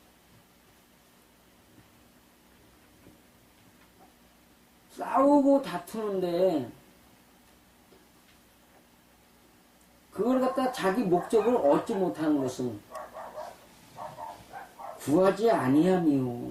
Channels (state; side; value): identical; both; correlation 1.00